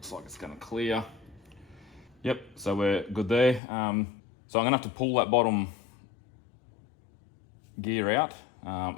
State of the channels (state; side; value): drops out; right; at 3.6 s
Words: like it's gonna clear. Yep, so we're good there. So I'm gonna have to pull that bottom gear out